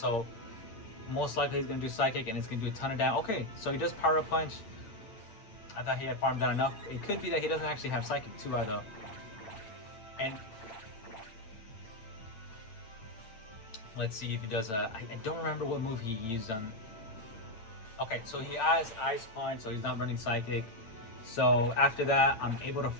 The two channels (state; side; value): late; right; 8.9 ms